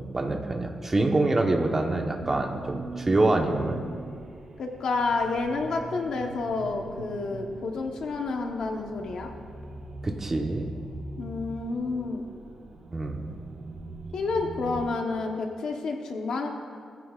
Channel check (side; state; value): both; normal; correlation 0.86